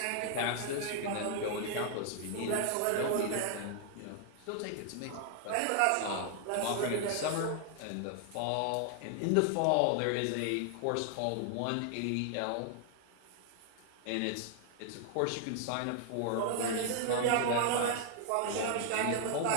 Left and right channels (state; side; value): different; both; correlation 0.00